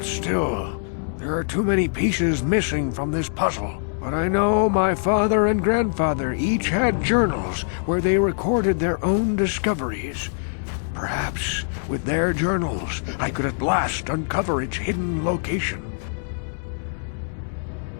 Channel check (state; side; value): silent; right; digital silence